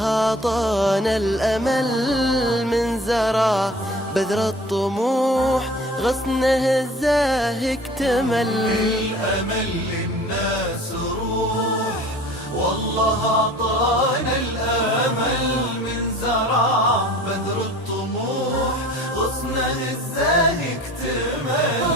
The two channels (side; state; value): both; normal; correlation 0.45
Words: أعطانا الأمل من زرع بذر الطموح، غصنه الزاهي اكتمل. الأمل للناس روح، والله أعطانا الأمل من زرع بذر الطموح، غصنه الزاهي